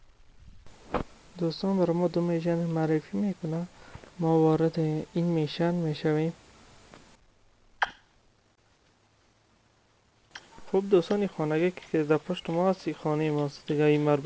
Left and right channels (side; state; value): both; identical; correlation 1.00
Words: دوستان برای ما دو میشن معرفی میکنه، ما وارد این میشن میشویم. خب دوستان، این خانگی که در پشت ما هست این خانه ماست دیگه، این